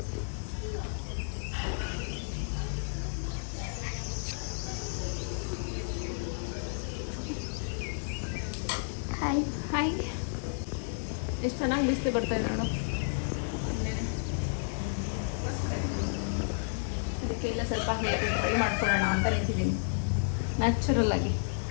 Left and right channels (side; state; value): right; silent; digital silence